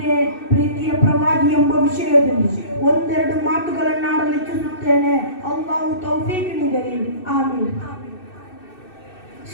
ಪ್ರೀತಿಯ ಪ್ರವಾದಿ ಎಂಬ ವಿಷಯದಲ್ಲಿ ಒಂದೆರಡು ಮಾತುಗಳನ್ನಾಡಲು ಇಚ್ಛಿಸುತ್ತೇನೆ. ಅಲ್ಲಾಹು ತೌಫೀಕ್ ನೀಡಲಿ, ಆಮೀನ್.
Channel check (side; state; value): right; late; 2.6 ms